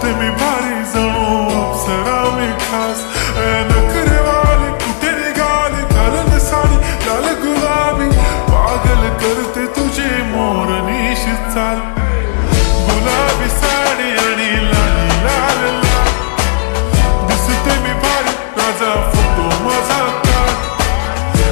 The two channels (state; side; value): silent; right; digital silence